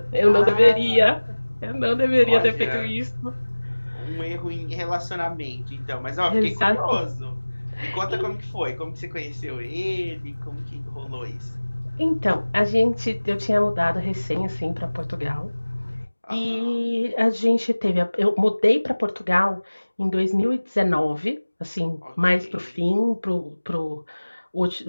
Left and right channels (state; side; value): inverted; both; correlation -1.00